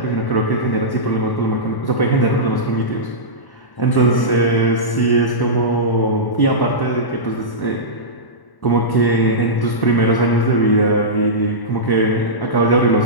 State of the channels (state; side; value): late; right; 1.1 ms